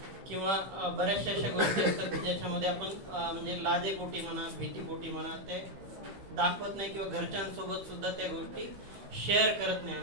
किंवा बऱ्याचशा अशा गोष्टी असतात की ज्याच्यामध्ये आपण म्हणजे लाजेपोटी म्हणा, भीतीपोटी म्हणा ते दाखवत नाही किंवा घरच्यांसोबत सुद्धा त्या गोष्टी शेअर करत नाही.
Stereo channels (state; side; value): late; left; 15 ms